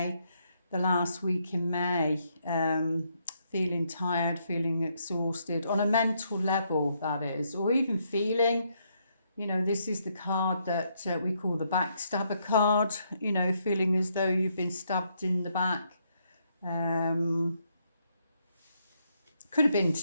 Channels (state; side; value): inverted; both; correlation -0.75